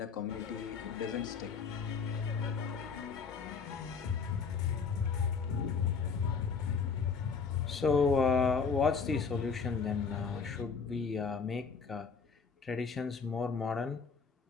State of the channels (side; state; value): right; quieter; 5.4 dB